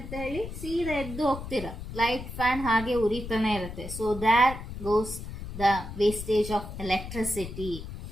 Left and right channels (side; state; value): left; noise; rumble, 9 dB below the sound